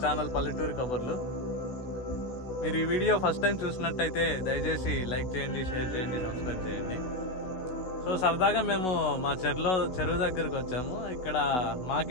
channel పల్లెటూరు కబుర్లు. మీరు ఈ వీడియో ఫస్ట్ టైం చూసినట్టయితే దయచేసి లైక్ చేయండి, షేర్ చేయండి, సబ్స్క్రైబ్ చేయండి. సో సరదాగా మేము మా చెరువు దగ్గరికి వచ్చాము. ఇక్కడ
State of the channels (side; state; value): right; late; 16 ms